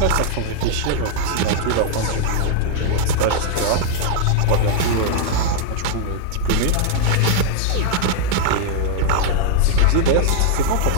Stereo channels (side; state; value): both; different; correlation -0.01